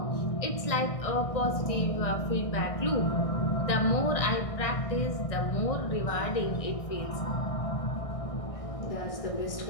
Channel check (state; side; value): late; right; 1.6 ms